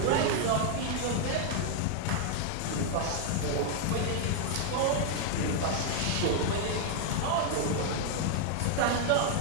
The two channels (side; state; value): both; different; correlation 0.00